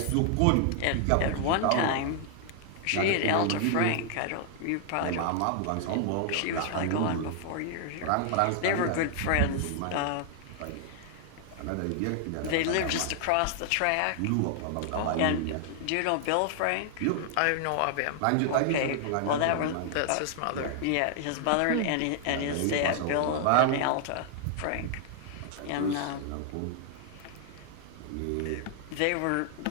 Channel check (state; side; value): different; both; correlation 0.00